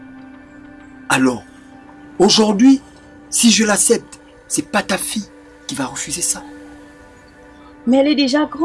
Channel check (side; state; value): both; identical; correlation 1.00